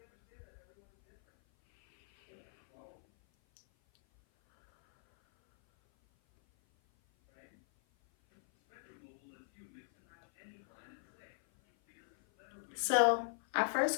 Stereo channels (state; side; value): silent; right; 52 dB below the other